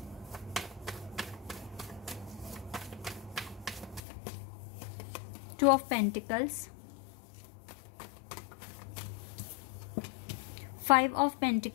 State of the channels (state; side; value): drops out; right; at 4.0 s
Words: two of pentacles, 5 of